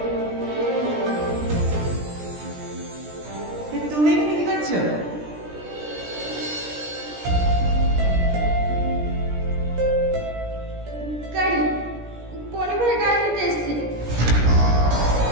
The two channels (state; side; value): late; left; 17 ms